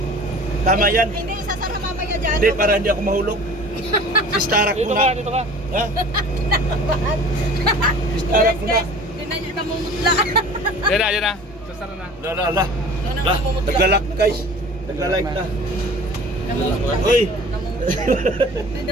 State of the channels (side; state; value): both; normal; correlation 0.44